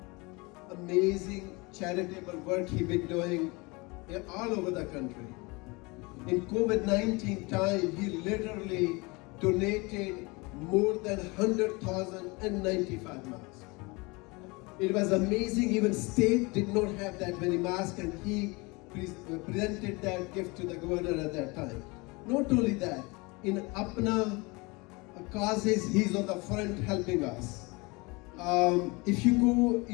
Amazing charitable work he's been doing all over the country. In COVID-19 time, he literally donated more than 100,095 masks. It was amazing. Even state did not have that many masks, and he presented that gift to the governor at that time. Not only that, in APPNA causes, he's on the front helping us. If you go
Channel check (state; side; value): quieter; right; 26.2 dB